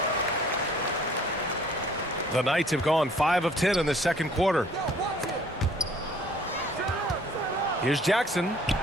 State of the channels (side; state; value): both; normal; correlation 0.56